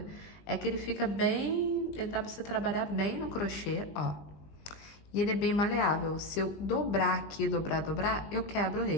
é que ele fica bem, ele dá pra você trabalhar bem no crochê, ó. E ele é bem maleável. Se eu dobrar aqui, dobrar, eu quebro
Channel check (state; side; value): late; right; 20 ms